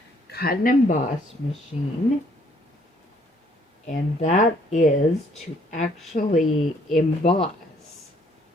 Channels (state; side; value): normal; both; correlation 0.64